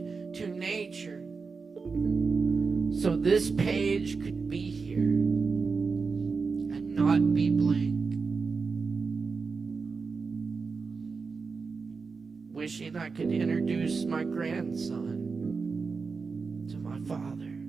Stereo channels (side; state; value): left; quieter; 4.8 dB